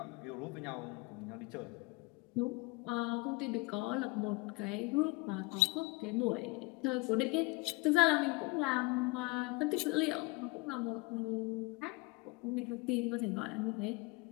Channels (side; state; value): right; quieter; 26.1 dB